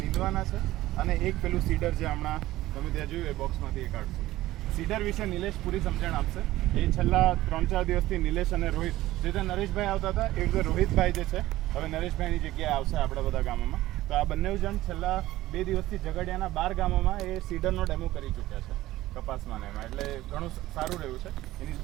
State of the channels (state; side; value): quieter; left; 16.1 dB